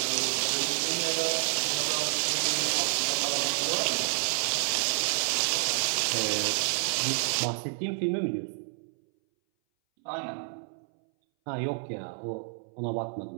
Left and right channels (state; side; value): silent; left; 59 dB below the other